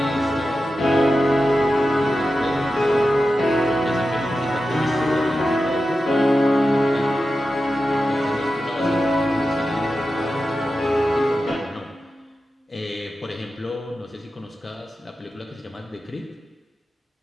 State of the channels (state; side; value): normal; both; correlation 0.92